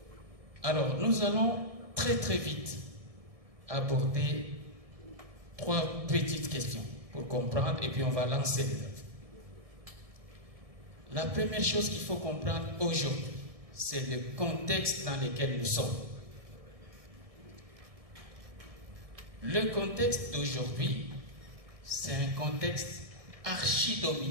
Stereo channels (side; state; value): left; late; 1.7 ms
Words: Alors, nous allons très vite aborder 3 petites questions pour comprendre et puis on va lancer les œuvres. La première chose qu'il faut comprendre aujourd'hui, c'est le contexte dans lequel nous sommes. Le contexte d'aujourd'hui, c'est un contexte